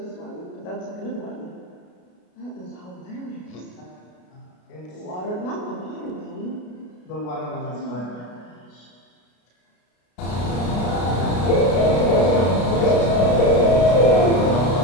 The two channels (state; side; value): late; right; 33 ms